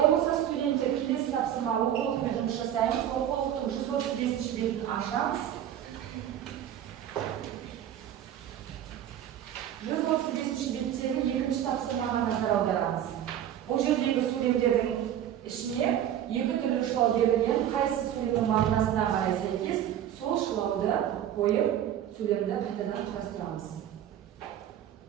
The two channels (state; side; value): quieter; left; 10.7 dB